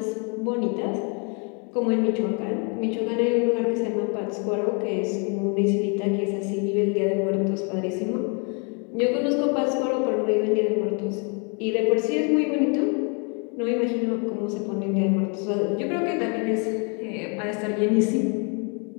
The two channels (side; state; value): right; quieter; 36.1 dB